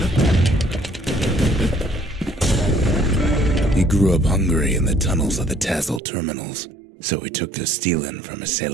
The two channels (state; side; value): drops out; left; at 6.0 s